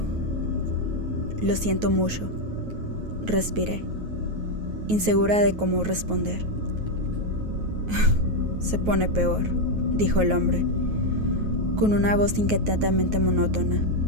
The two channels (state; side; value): late; left; 9.4 ms